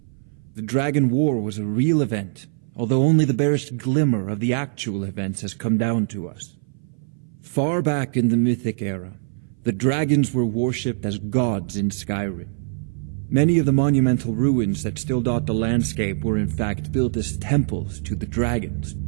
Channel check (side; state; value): left; silent; 59 dB below the other